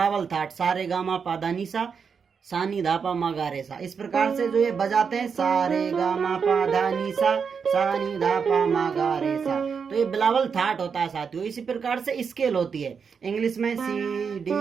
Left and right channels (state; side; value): quieter; left; 6.1 dB